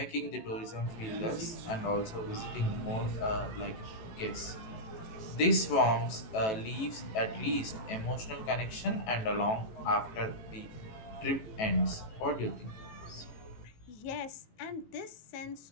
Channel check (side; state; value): right; late; 18 ms